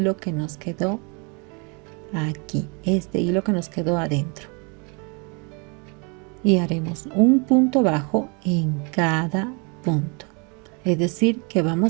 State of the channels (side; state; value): left; quieter; 33.1 dB